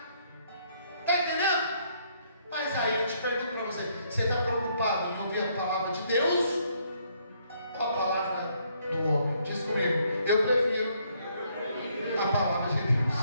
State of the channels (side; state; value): both; inverted; correlation -0.70